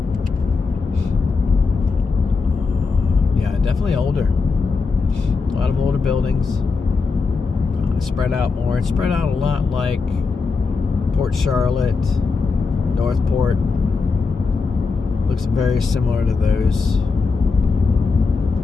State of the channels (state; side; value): quieter; right; 4.5 dB